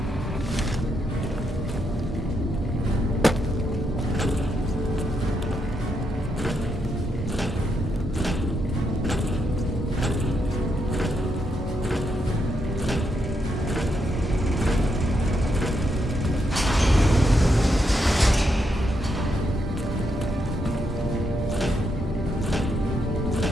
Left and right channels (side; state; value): both; normal; correlation 0.80